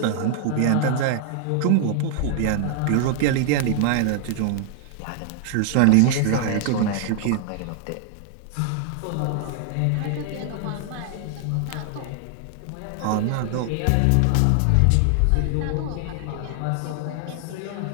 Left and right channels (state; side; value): different; both; correlation 0.00